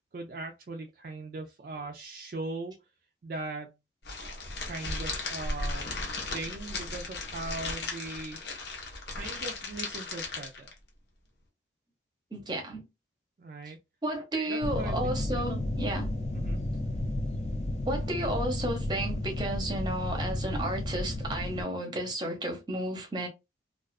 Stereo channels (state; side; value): normal; both; correlation 0.53